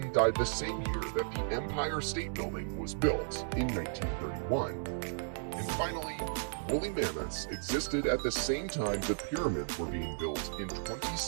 died the same year that the Empire State Building was built in 1931. And finally, woolly mammoths existed at the same time the pyramids were being built in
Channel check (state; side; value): silent; left; digital silence